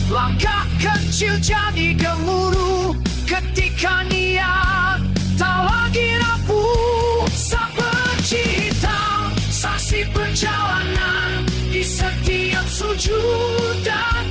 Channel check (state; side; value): identical; both; correlation 1.00